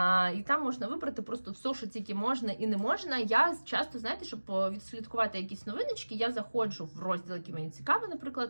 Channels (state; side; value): inverted; both; correlation -1.00